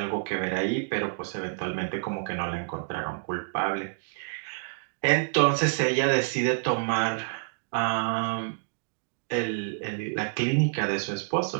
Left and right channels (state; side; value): silent; left; digital silence